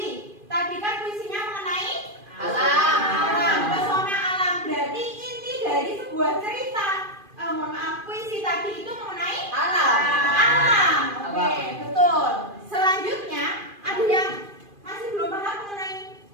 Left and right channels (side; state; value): left; late; 2.5 ms